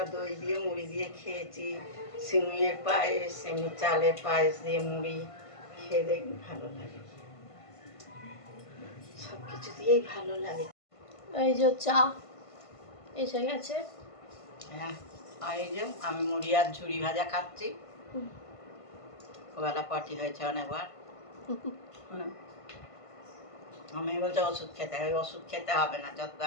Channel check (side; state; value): right; late; 1.5 ms